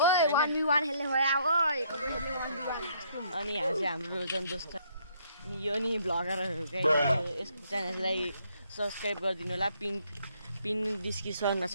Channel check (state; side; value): inverted; both; correlation -0.67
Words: अनि यहाँ चाहिँ हाम्रो जन दोस्त अनि यो नि भ्लगरहरू गाइज। यसको च्यानललाई सब्सक्राइब गरिदिनु होला। पिन डिस्क्रिप्सनमा